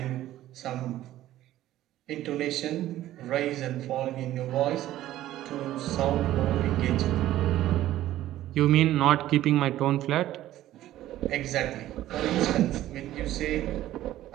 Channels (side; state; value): left; quieter; 14.0 dB